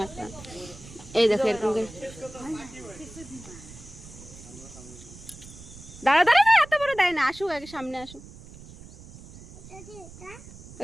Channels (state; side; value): noise; right; rumble, 17 dB below the sound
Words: এই দেখো এরকম করে দাঁড়া দাঁড়া না এত বড় দেয় না আসুক আগে সামনে আসুক